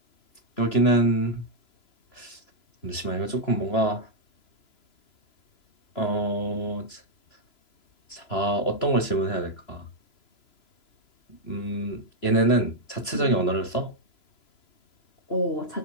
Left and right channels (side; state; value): right; late; 3.0 ms